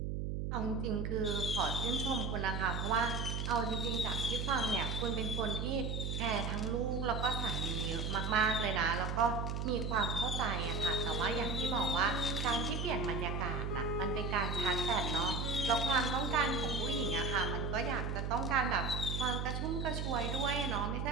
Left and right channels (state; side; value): noise; right; hum, 2 dB below the sound